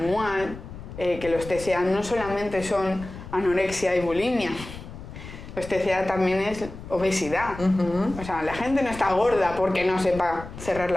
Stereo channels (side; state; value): left; noise; rumble, 13 dB below the sound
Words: que los TCA no solamente son anorexia y bulimia, Pues TCA también es obesidad. O sea, la gente no está gorda porque no sepa cerrar